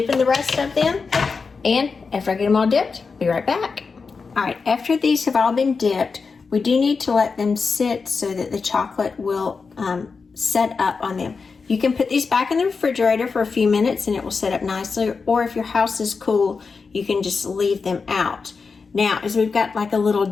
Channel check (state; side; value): quieter; right; 4.8 dB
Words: the rest of them. And after I get them all dipped, I'll be right back. All right, after these have all been dipped, we do need to let them sit so that the chocolate will set up on them. You can put these back in the refrigerator for a few minutes and it will set up nicely. Or if your house is cool, you can just leave them out. Now, as we've got like a little